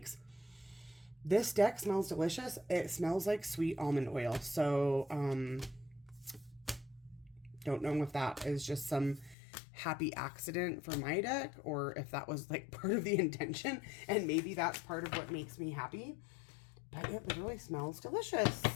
This deck smells delicious. It smells like sweet almond oil. So, don't know if that is just some happy accident for my deck or if that was like part of the intention, and maybe that's part of what makes me happy. But it literally smells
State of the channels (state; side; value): drops out; right; at 9.3 s